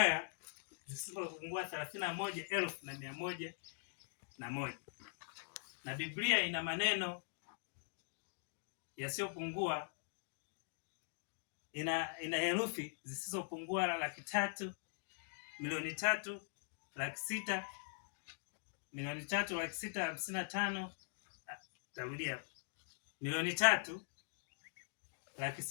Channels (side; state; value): right; silent; digital silence